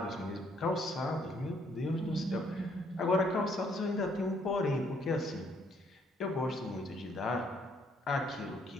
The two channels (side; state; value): both; normal; correlation 0.67